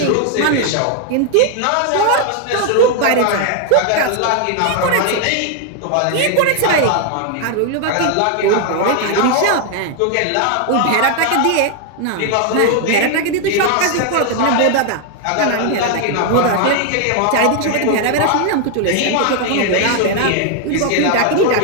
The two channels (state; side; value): different; both; correlation 0.00